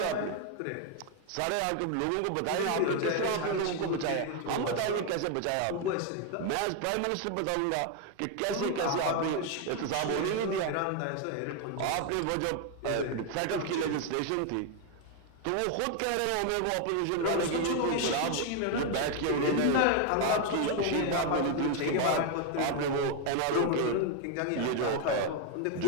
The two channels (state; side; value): different; both; correlation 0.01